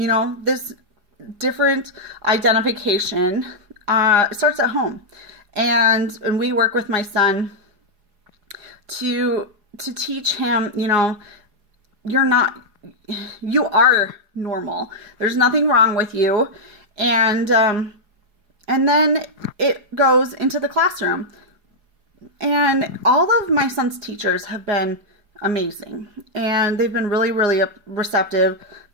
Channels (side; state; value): left; late; 4.8 ms